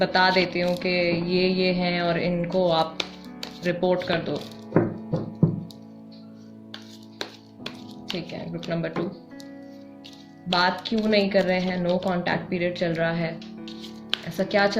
देती हूँ कि ये हैं और इनको आप रिपोर्ट कर दो, ठीक है। ग्रुप नंबर 2, बात क्यों नहीं कर रहे हैं? नो कांटेक्ट पीरियड चल रहा है। ऐसा क्या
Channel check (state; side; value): identical; both; correlation 1.00